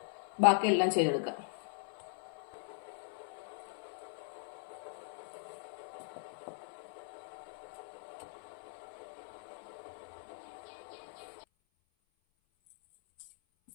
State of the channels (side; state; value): right; silent; 51 dB below the other